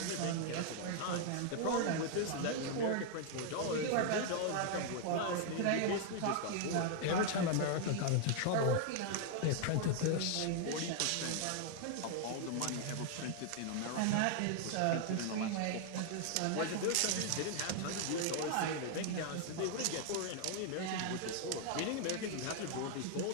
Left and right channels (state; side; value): different; both; correlation 0.00